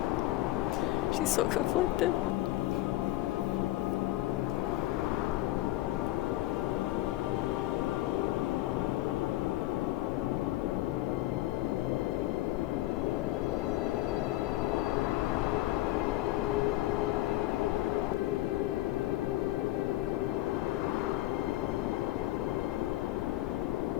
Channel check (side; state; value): right; quieter; 16.5 dB